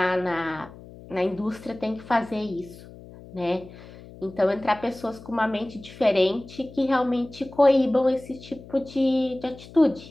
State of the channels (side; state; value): left; noise; hum, 18 dB below the sound